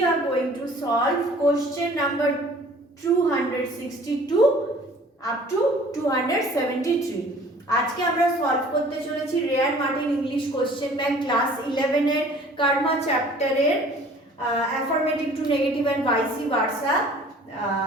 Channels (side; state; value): both; normal; correlation 0.51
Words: are going to solve question number 262 up to 273. আজকে আমরা solve করতে চলেছি রেয়ার Martin English question bank class 11 এর কর্মা চ্যাপ্টারের affirmative to negative and vice versa